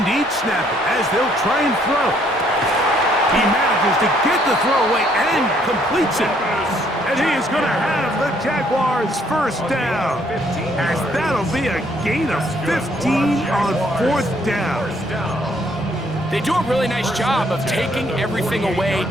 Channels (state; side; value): normal; both; correlation 0.66